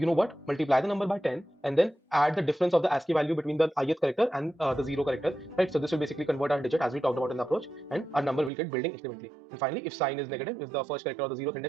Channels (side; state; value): left; drops out; at 8.5 s